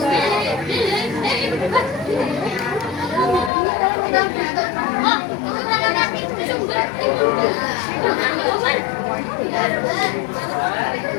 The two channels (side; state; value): right; drops out; at 3.5 s